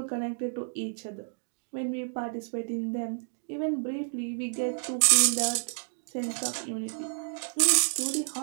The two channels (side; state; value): left; silent; digital silence